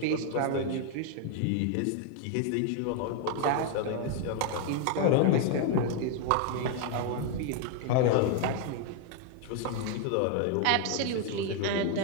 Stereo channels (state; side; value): different; both; correlation 0.00